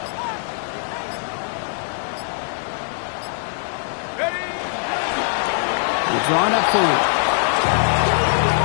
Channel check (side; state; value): right; silent; digital silence